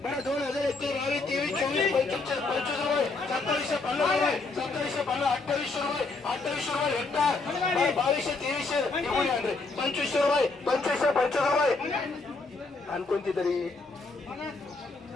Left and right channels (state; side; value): quieter; right; 3.7 dB